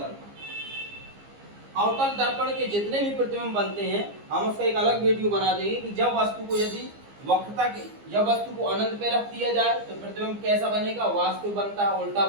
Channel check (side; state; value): left; late; 15 ms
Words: अवतल दर्पण के जितने भी प्रतिबिंब बनते हैं हम उसका एक अलग वीडियो बना देंगे कि जब वस्तु को यदि वक्रता के, जब वस्तु को अनंत पे रख दिया जाए तो प्रतिबिंब कैसा बनेगा, वास्तविक बनता है, उल्टा